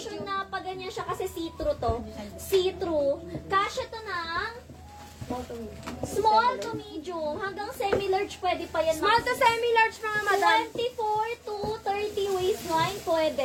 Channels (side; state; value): both; identical; correlation 1.00